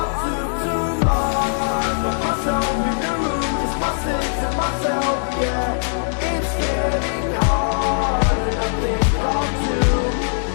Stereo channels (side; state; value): right; silent; digital silence